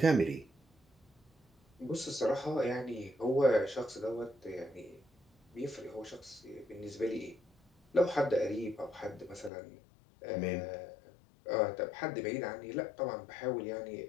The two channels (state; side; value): drops out; right; at 9.5 s